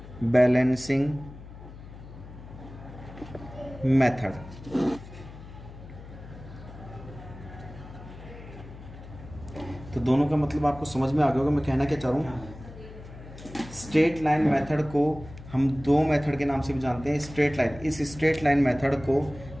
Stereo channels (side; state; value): left; noise; hum, 16 dB below the sound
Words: बैलेंसिंग मेथड। तो दोनों का मतलब आपको समझ में आ गया होगा मैं कहना क्या चाह रहा हूँ। स्ट्रेट लाइन मेथड को हम दो मेथड के नाम से भी जानते हैं। स्ट्रेट लाइन, इस स्ट्रेट लाइन मेथड को